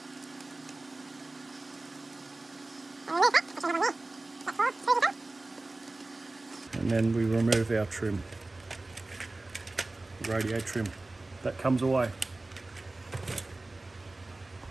And then we remove our trim, radio trim, that comes away.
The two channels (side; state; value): left; quieter; 3.0 dB